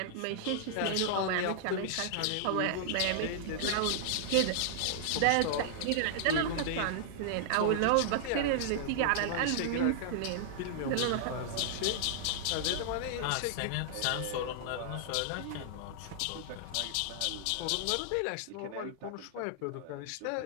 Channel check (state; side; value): different; both; correlation -0.01